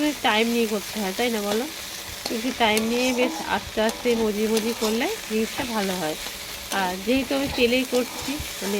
টাইম নিয়ে করতে হয়, তাই না বলো? একটু টাইম নিয়ে বেশ আস্তে আস্তে মজি করলে জিনিসটা ভালো হয়। আর যেহেতু আমি তেলেই করছি, মানে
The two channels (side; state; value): both; identical; correlation 1.00